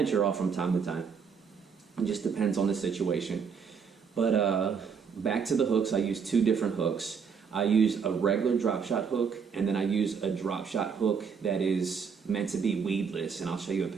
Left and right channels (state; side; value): quieter; left; 6.2 dB